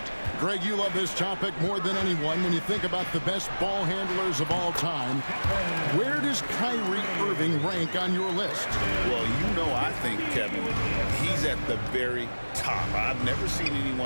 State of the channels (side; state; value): both; inverted; correlation -1.00